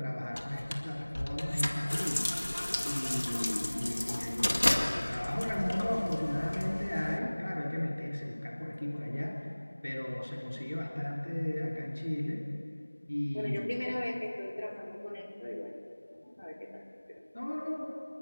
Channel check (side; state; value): both; inverted; correlation -1.00